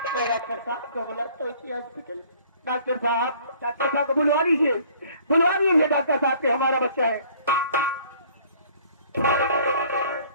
मैं डॉक्टर साहब को बोला तो हॉस्पिटल, डॉक्टर साहब को बुलवा लीजिए, बुलवा लीजिए डॉक्टर साहब के, हमारा बच्चा है।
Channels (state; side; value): inverted; both; correlation -0.55